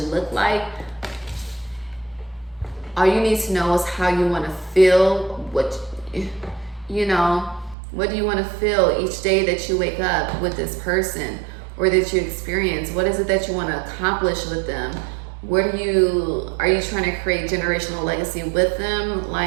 look like. All you need to know is how you want to feel, what do you want to feel each day that you wake up with this person or that you experience. What is it that you want to accomplish with them? Are you trying to create generational legacy with them?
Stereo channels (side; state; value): left; drops out; at 7.8 s